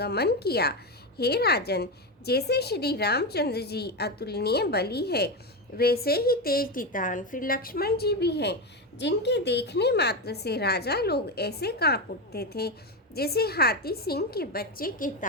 किया। हे राजन, जैसे श्री रामचंद्र जी अतुलनीय बली है, वैसे ही तेज तितान फिर लक्ष्मण जी भी हैं, जिनके देखने मात्र से राजा लोग ऐसे कांप उठते थे जैसे हाथी सिंह के बच्चे के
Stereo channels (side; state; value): both; normal; correlation 0.14